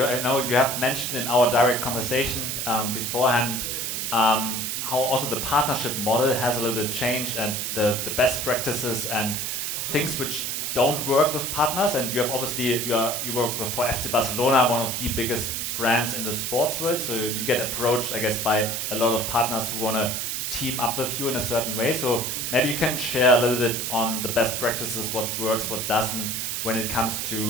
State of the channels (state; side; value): noise; right; hiss, 2 dB below the sound